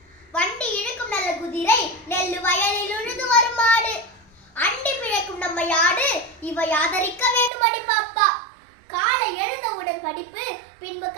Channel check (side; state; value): left; drops out; at 7.5 s